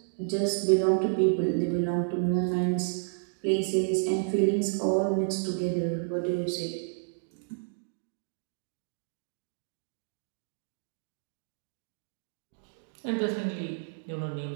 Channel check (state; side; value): silent; left; digital silence